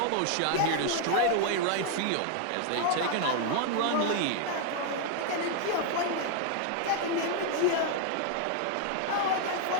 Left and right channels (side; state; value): both; different; correlation 0.00